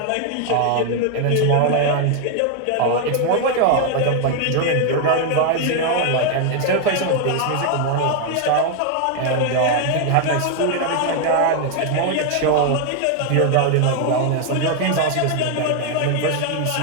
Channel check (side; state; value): both; different; correlation 0.00